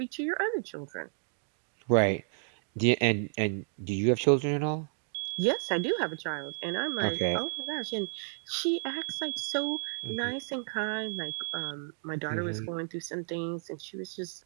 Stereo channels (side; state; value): left; silent; digital silence